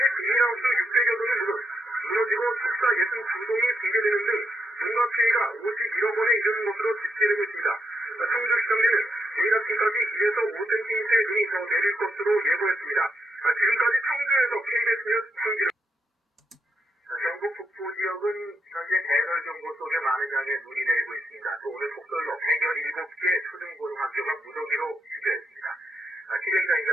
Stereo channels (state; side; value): normal; both; correlation 0.80